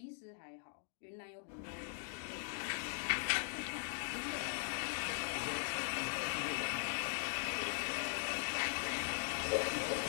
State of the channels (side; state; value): right; silent; digital silence